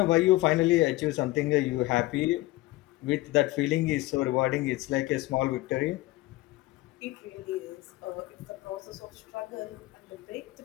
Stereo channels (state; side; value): quieter; right; 18.8 dB